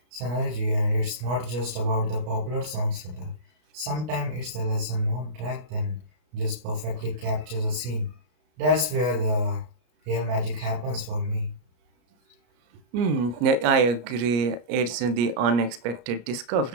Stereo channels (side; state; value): left; late; 33 ms